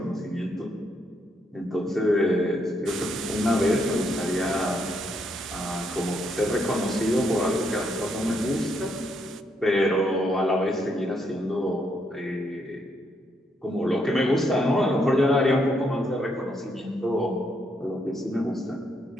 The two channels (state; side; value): normal; both; correlation 0.75